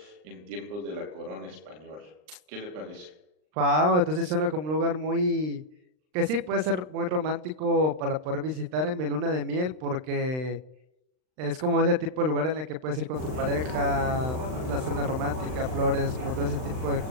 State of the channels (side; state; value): left; late; 39 ms